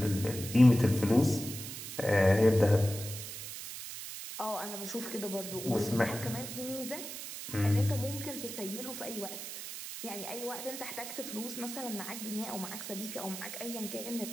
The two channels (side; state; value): right; noise; hiss, 8 dB below the sound